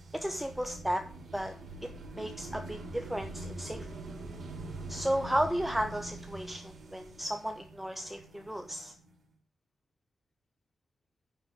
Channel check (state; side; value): normal; both; correlation 0.95